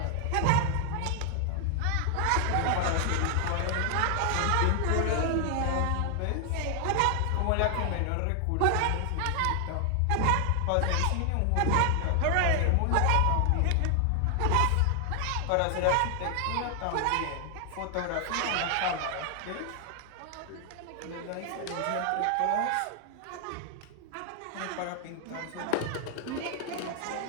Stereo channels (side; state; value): both; different; correlation 0.00